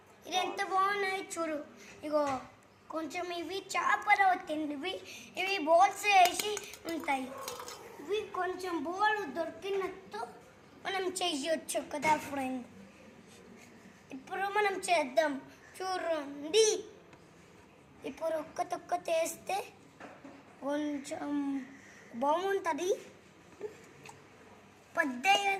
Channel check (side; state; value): both; identical; correlation 1.00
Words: ఇది ఎంత బాగున్నాయి చూడు. ఇగో కొంచెం ఇవి చేపలు తిండివి, ఇవి బోల్స్ వేసి ఉంటాయి. ఇవి కొంచెం బోల్ దొరికినట్టు మనం చేయొచ్చు కదా ఫ్రెండ్. ఇప్పుడు మనం చేద్దాం చూడండి. ఇప్పుడు ఒక్క వేస్తే కొంచెం బాగుంటుంది. పెద్ద